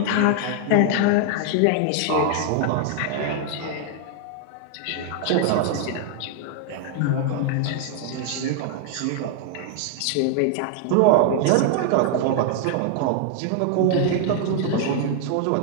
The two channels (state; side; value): different; both; correlation 0.00